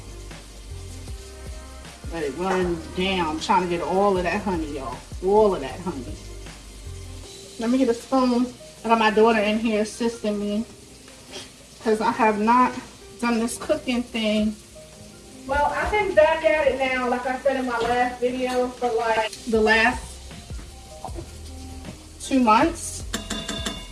Let it run down. I'm trying to get all of that honey, y'all. All of that honey. Let me get a spoon. I got my daughter in here assisting me because I have not done this cooking thing. Well, I've been back at it now, like I said in my last video, for like the last 2 months.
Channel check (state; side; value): identical; both; correlation 1.00